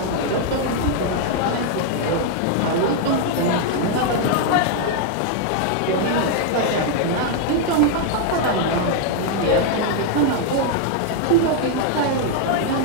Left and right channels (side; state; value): both; different; correlation 0.00